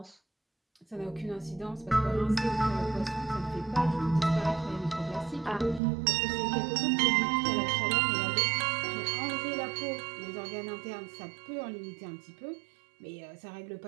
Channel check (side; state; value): left; drops out; at 5.8 s